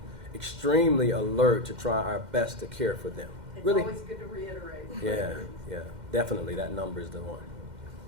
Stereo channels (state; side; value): late; left; 2.1 ms